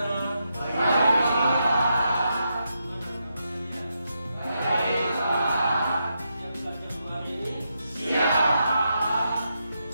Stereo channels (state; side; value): inverted; both; correlation -0.83